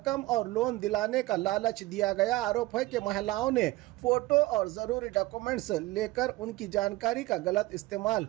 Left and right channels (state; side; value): quieter; left; 19.0 dB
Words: और लोन दिलाने का लालच दिया गया। आरोप है कि महिलाओं ने फोटो और जरूरी डॉक्यूमेंट्स लेकर उनकी जानकारी का गलत इस्तेमाल